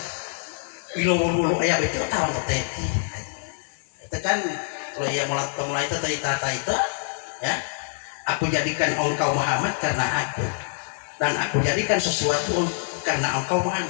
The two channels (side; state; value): right; silent; digital silence